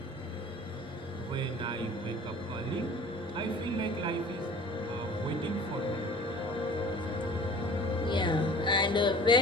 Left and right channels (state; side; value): normal; both; correlation 0.45